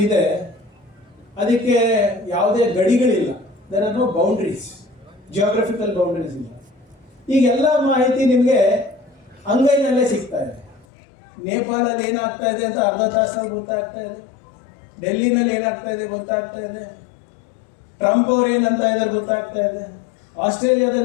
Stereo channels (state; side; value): drops out; right; at 10.9 s